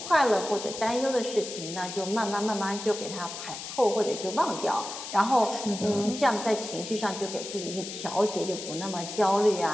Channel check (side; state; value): left; noise; hiss, 9 dB below the sound